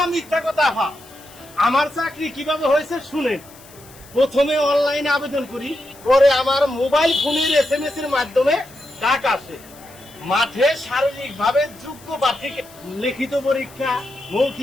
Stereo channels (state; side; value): noise; left; hiss, 22 dB below the sound